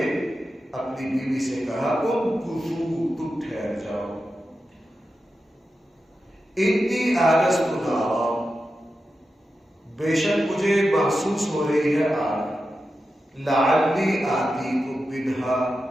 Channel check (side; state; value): both; normal; correlation 0.91